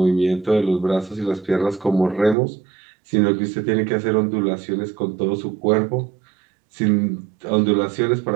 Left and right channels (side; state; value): left; drops out; at 2.4 s